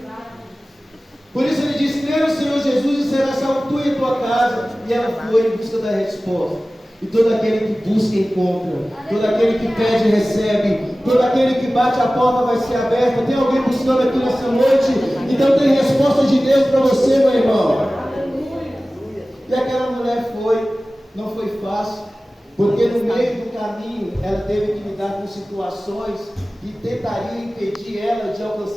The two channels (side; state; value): both; normal; correlation 0.97